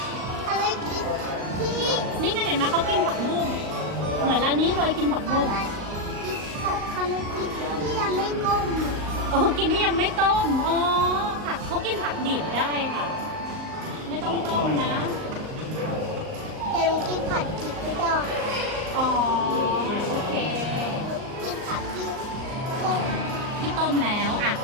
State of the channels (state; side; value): late; left; 38 ms